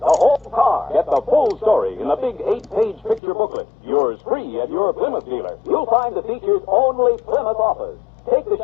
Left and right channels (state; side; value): drops out; right; at 3.2 s